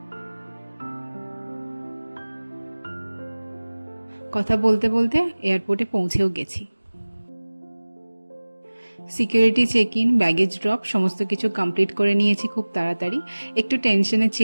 কথা বলতে বলতে এয়ারপোর্টে পৌঁছেও গেছি। Security check in, baggage drop সমস্ত কিছু কমপ্লিট করে নিয়েছি খুব তাড়াতাড়ি। একটু টেনশনে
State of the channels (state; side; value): inverted; both; correlation -1.00